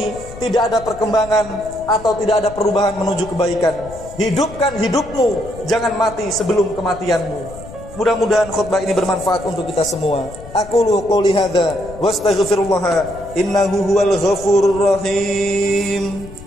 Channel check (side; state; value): left; noise; rumble, 16 dB below the sound